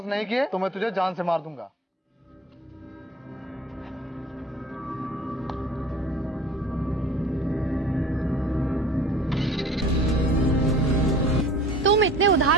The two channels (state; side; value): normal; both; correlation 0.46